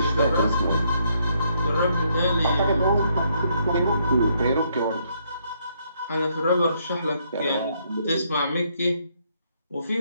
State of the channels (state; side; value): inverted; both; correlation -0.72